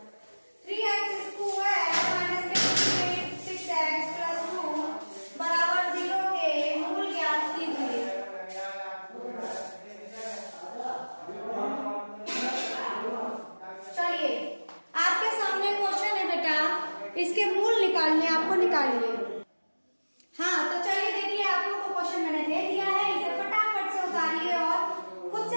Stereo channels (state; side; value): inverted; both; correlation -1.00